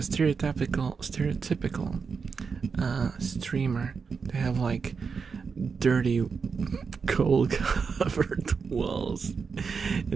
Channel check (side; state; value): left; quieter; 5.5 dB